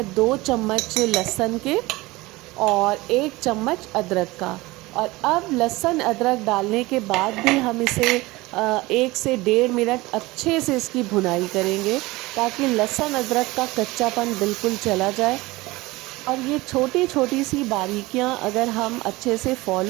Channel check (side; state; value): left; quieter; 20.9 dB